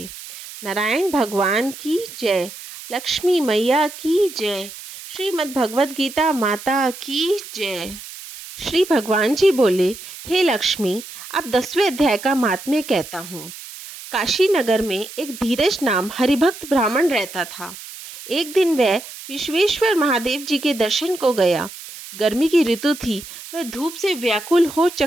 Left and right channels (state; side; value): noise; right; hiss, 14 dB below the sound